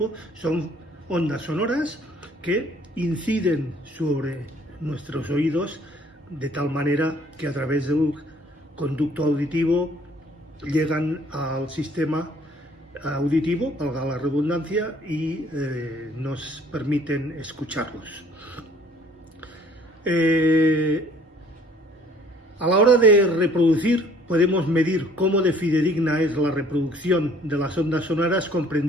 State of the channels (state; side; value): normal; both; correlation 0.57